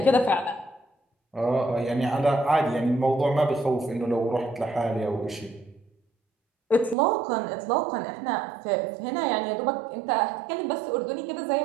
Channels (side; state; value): left; drops out; at 7.0 s